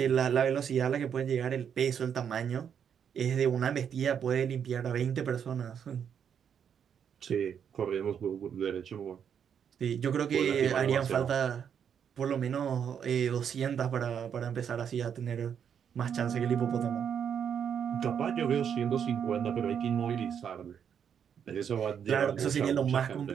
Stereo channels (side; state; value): left; quieter; 8.0 dB